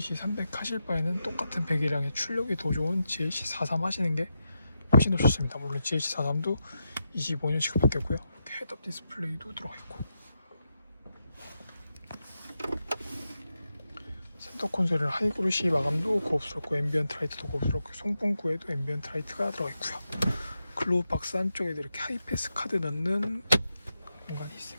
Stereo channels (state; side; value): inverted; both; correlation -0.86